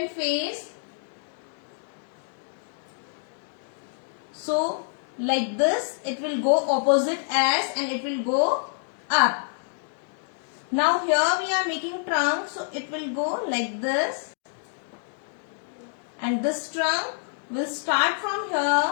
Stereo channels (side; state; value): right; silent; 60 dB below the other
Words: face. So like this, it will go opposite S and it will go up. Now here we are making trunk, so it will go like this, and this trunk will start from